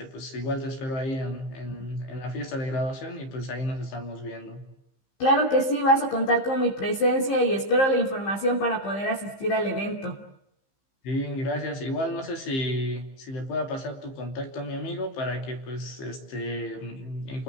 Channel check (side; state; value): right; late; 15 ms